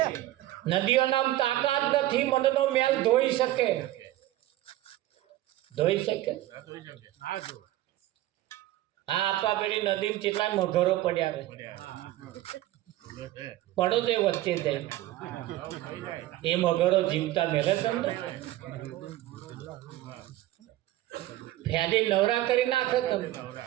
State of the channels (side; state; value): left; quieter; 15.3 dB